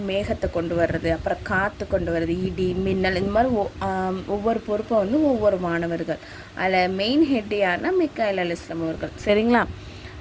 மேகத்தை கொண்டு வர்றது, அப்புறம் காற்று கொண்டு வர்றது, இடி மின்னல், இந்த மாதிரி ஒவ்வொரு பொறுப்பை ஒவ்வொரு மாணவர்கள். அதில் மெயின் ஹெட் யாருன்னா மீகாயில் அலைஹிஸ்ஸலாம் அவர்கள். சரிங்களா?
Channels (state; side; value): identical; both; correlation 1.00